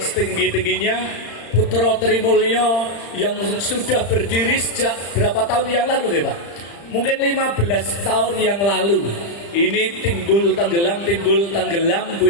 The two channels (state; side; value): late; right; 35 ms